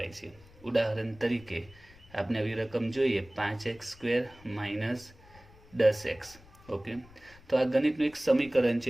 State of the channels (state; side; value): noise; left; rumble, 24 dB below the sound